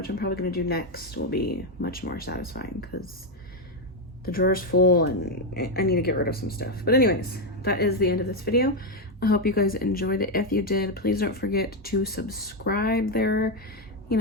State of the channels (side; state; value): both; normal; correlation 0.05